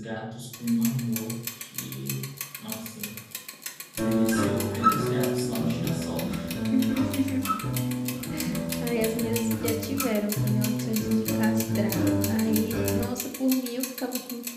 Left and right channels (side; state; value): both; identical; correlation 1.00